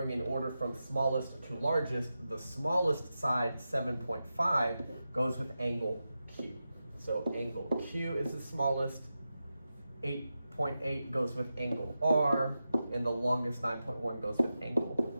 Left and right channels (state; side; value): inverted; both; correlation -0.91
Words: in order from smallest to largest, the smallest side, 7.5, goes with angle Q. So angle Q is the smallest, 8.8 goes with angle R, and the longest 9.1 goes with